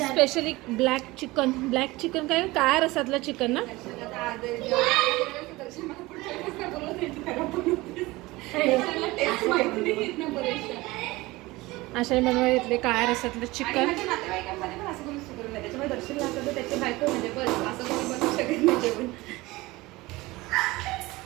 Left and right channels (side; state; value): left; quieter; 20.7 dB